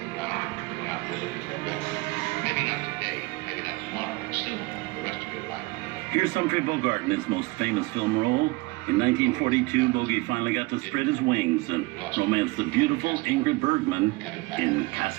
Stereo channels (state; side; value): quieter; left; 24.0 dB